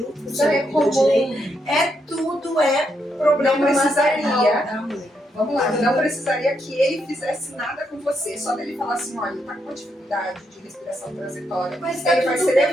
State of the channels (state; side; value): normal; both; correlation 0.79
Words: se ele não direito. Tudo problema. Não precisaria. Da mãe. Vamos lá, não precisaria que ele fizesse nada com você. Só dele falar assim, olha, ele tá com uma dificuldade de respiração transitória, mas ele vai ser bem.